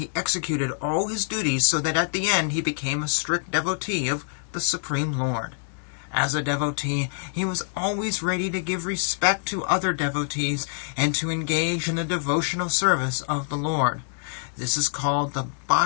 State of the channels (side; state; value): right; silent; 61 dB below the other